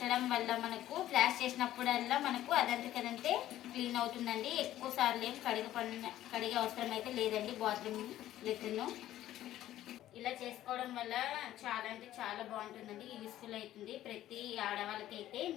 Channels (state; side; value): quieter; right; 13.4 dB